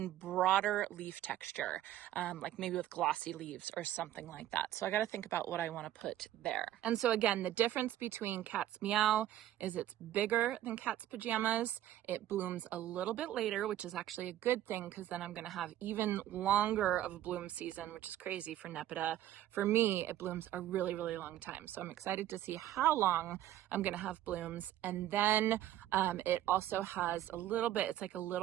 broader leaf texture, like maybe with glossy leaves or something like that. So I gotta think about what I wanna put there. And so again, the difference between Cat's Meow is it's bigger than Cat's Pajamas. It blooms a little bit later, which is actually a good thing because then I'm gonna have even even longer of a bloom season, which is crazy for Nepeta. For me, it blooms a really, really long time. So I'm excited to see how long I'm going to have blooms. And then it also has a little bit, it's like a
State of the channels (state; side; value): quieter; left; 12.9 dB